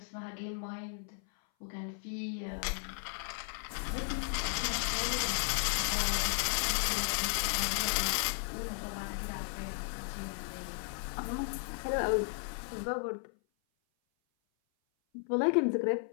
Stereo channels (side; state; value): right; silent; 55 dB below the other